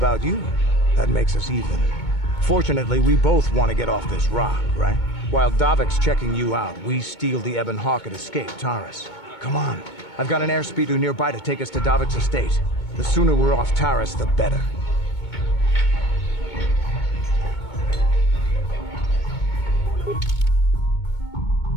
you. That makes us even. Fortunately, we both want to get off this rock, right? While Davik's checking you out, we steal the Ebon Hawk and escape Tarris. Come on. I've got an airspeeder nearby to take us to Davik's estate. The sooner we're off Tarris, the better.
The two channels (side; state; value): right; late; 2.2 ms